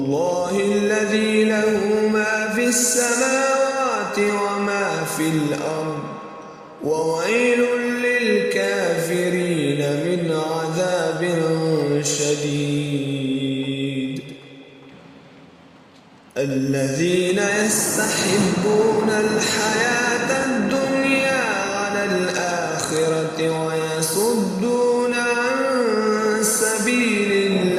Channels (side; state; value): both; identical; correlation 1.00